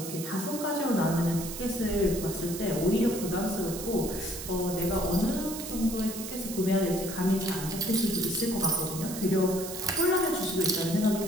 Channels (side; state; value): right; noise; hiss, 9 dB below the sound